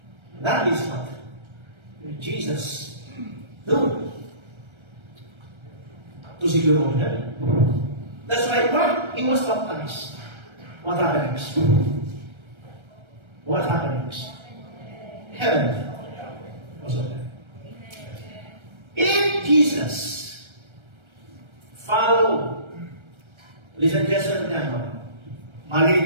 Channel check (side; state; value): left; late; 1.3 ms